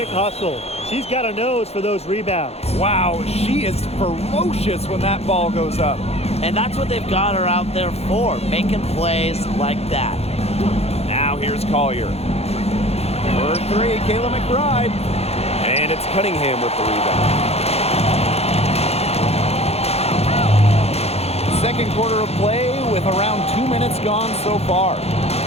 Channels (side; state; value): right; late; 0.30 ms